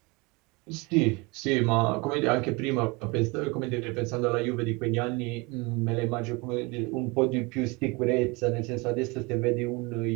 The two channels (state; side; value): quieter; left; 25.9 dB